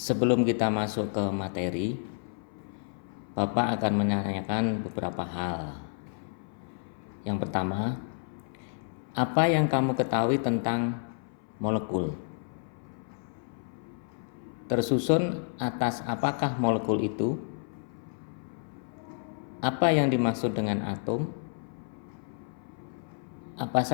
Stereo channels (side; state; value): right; silent; 58 dB below the other